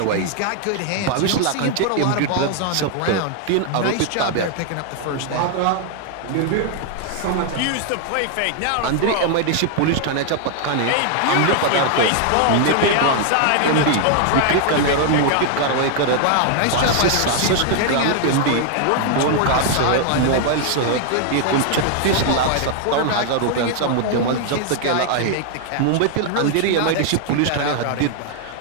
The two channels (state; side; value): different; both; correlation 0.00